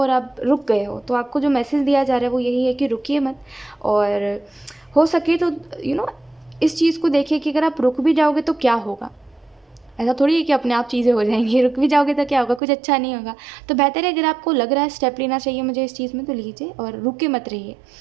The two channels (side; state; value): left; drops out; at 12.6 s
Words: आप रुक गए हो। तो आपको जो मैसेज दिया जा रहा है वो यही है कि रुकिए मत, और हो सके तो इस चीज़ को देखिए कि अगर आप रुक भी जाओगे तो क्या होगा। ऐसा थोड़ी है कि अपने आप चीज़ें हो जाएंगी, रुक भी जाओगे तो क्या होगा, कुछ अच्छा नहीं होगा। तो बेहतर है अगर आपको लग रहा है स्टेप लेना चाहिए मुझे इस चीज़ में, तो लीजिए और रुक के मत रहिए।